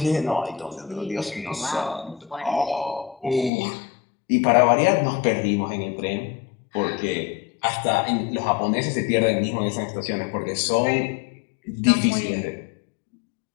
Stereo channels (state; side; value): drops out; right; at 3.5 s